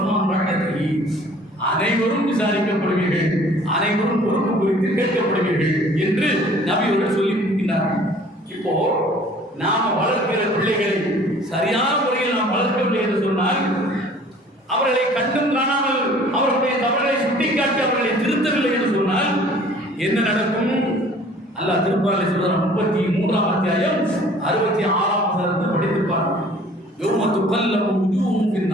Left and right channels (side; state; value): both; normal; correlation 0.52